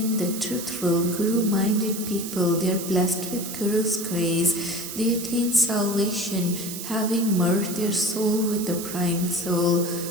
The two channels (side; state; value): right; noise; hiss, 8 dB below the sound